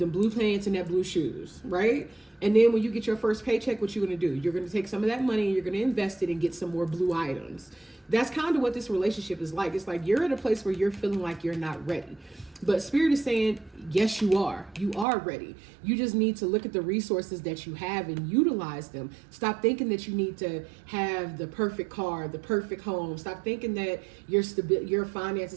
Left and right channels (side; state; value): left; drops out; at 15.1 s